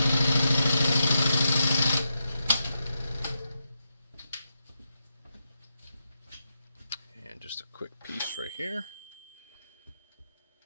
And just a quick piece right here.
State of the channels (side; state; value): both; inverted; correlation -0.86